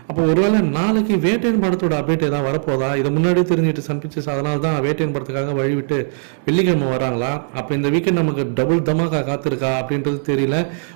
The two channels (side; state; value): left; silent; 67 dB below the other